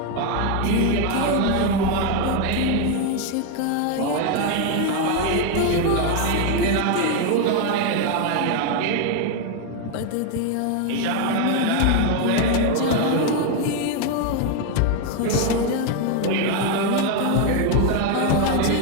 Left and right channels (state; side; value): different; both; correlation 0.01